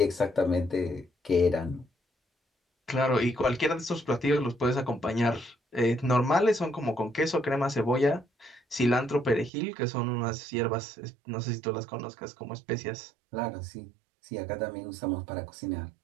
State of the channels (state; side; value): drops out; left; at 9.5 s